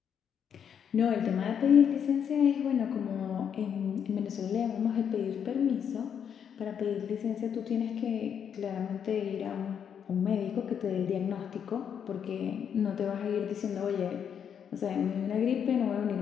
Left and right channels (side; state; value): right; quieter; 8.0 dB